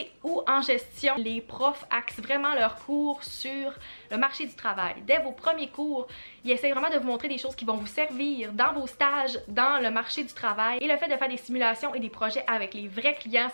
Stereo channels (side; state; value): both; inverted; correlation -1.00